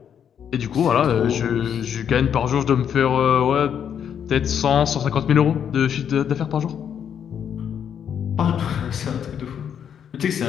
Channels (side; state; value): right; quieter; 8.4 dB